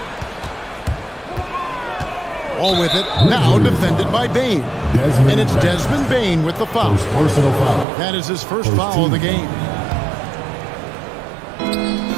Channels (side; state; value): left; drops out; at 7.9 s